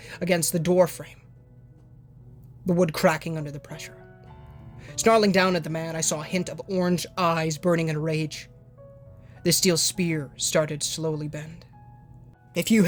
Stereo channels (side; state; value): both; identical; correlation 1.00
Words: against the door frame, the wood cracking under the pressure. Snarling down at the man, I saw a hint of orange eyes burning in rage. The steel spear started to slowly bend. If you